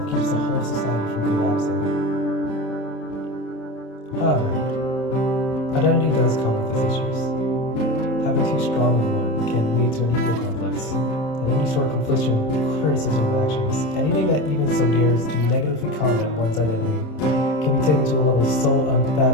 keeps the whole society from collapsing. However, identity does come with its issues. Having too strong of one can lead to an ego complex, and any sort of confliction, criticism of actions, anything that even so dares to negatively comment on one's identity can be taken to a level so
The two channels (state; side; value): late; right; 26 ms